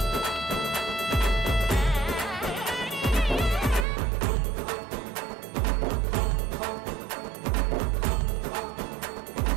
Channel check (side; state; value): left; drops out; at 3.9 s